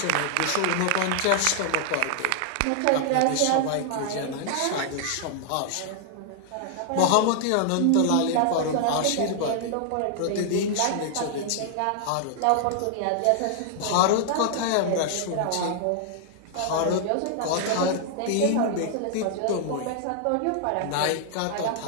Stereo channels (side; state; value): both; different; correlation -0.01